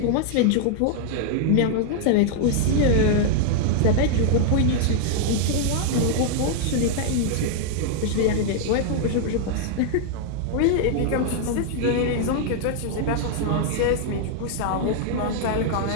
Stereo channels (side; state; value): both; different; correlation 0.00